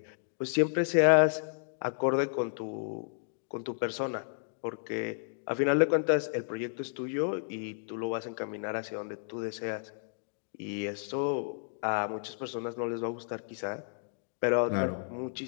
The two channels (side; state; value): right; silent; digital silence